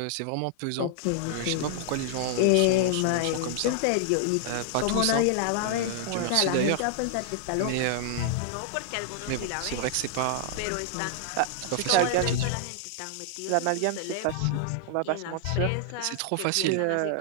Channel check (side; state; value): both; different; correlation -0.01